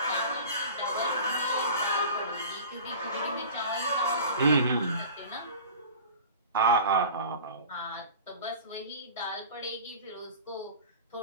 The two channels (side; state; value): both; inverted; correlation -0.39